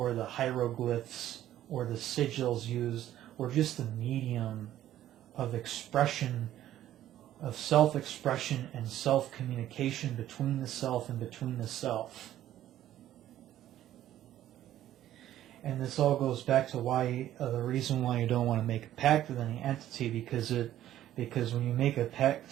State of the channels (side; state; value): left; quieter; 12.7 dB